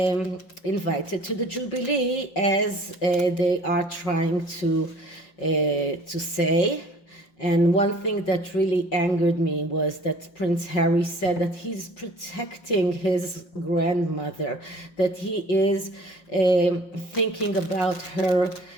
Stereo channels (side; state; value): right; late; 5.7 ms